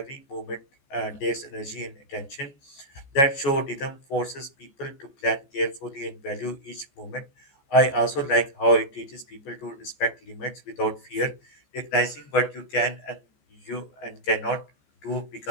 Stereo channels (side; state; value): right; late; 14 ms